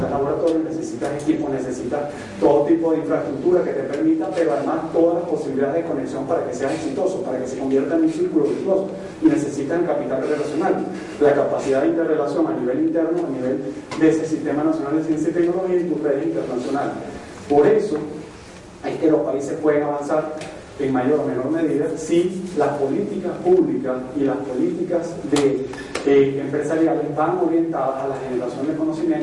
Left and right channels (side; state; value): both; identical; correlation 1.00